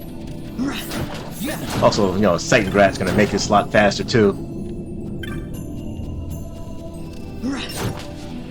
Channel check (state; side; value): identical; both; correlation 1.00